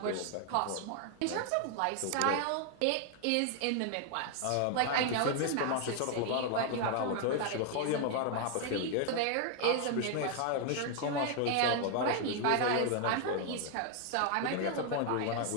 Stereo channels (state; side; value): different; both; correlation 0.00